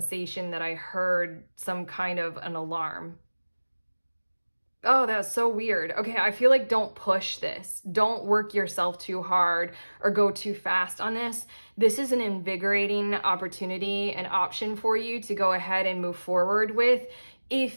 that I heard some kind of an alarm. Oh, that's so weird. Okay, I feel like don't push this. Don't work yourself too hard or go too fast on this. This is an invigorating opportunity, an option for you to go ahead and move forward with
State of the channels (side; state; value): both; inverted; correlation -1.00